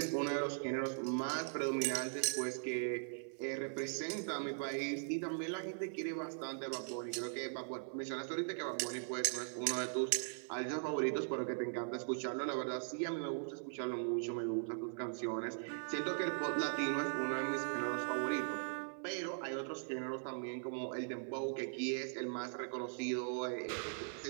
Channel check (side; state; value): left; silent; 51 dB below the other